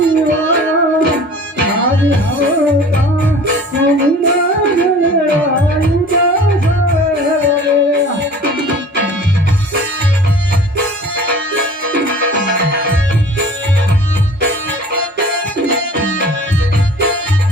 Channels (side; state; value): both; normal; correlation 0.44